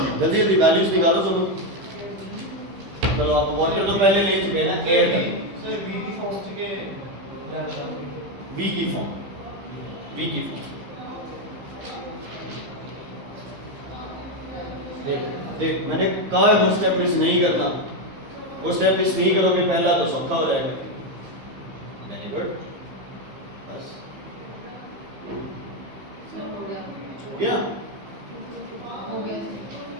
जल्दी जल्दी वैल्यूज निकालो दोनों। चलो आप वाटर तो पहले ले चुके हैं ना, एयर का सर वी की फॉर्म के वी की फॉर्म, वी की फॉर्म। देख देख मैंने कहा है वो स्टेप मिस नहीं करना, वो स्टेप मिस नहीं करोगे पहला तो सौखा हो जाएगा। वेरी गुड, बस हो गया।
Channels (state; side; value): late; left; 15 ms